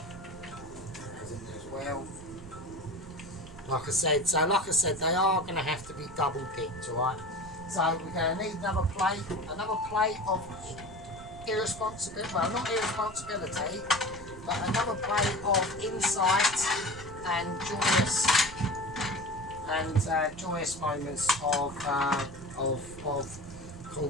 That goes in there as well. Like I said, they are going to have to be double dipped, alright? So we're going to need another plate of irresponsibility, well, not irresponsibility, but another plate of insight and joyous moments of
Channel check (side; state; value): right; noise; rumble, 17 dB below the sound